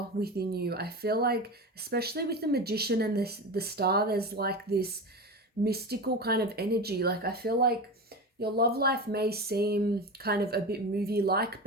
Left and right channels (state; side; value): normal; both; correlation 0.25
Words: within you. I feel like, especially with the Magician and the star, there's like this mystical kind of energy. Like I feel like your love life may seem kind of a bit movie-like,